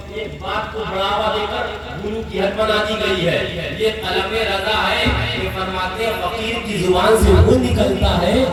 ایک بات کو بڑھاوا دے کر گرو کی حد بنا دی گئی ہے. یہ طلب رضا ہے کہ فرماتے ہیں فقیر کی زبان سے وہ نکلتا ہے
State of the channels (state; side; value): identical; both; correlation 1.00